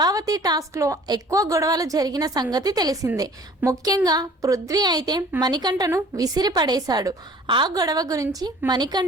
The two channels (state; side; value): normal; both; correlation 0.50